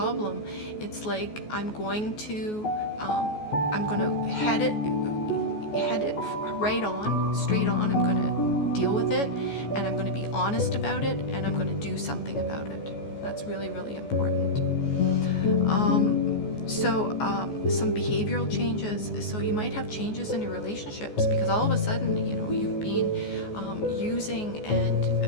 it's like I'm going to head it right on, straight on. I'm going to deal with it, and I'm going to be honest about it, and I'm going to do something about it. That's really, really important. Some behavioral changes. So you might have changes in your relationships, because all of a sudden, you know, you've been using and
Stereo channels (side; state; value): right; late; 14 ms